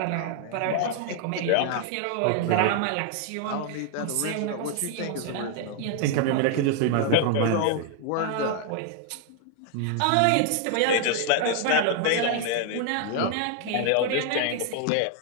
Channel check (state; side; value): different; both; correlation 0.00